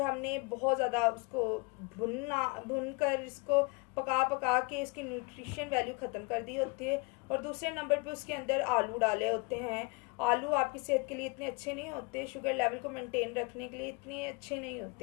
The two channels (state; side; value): quieter; right; 29.8 dB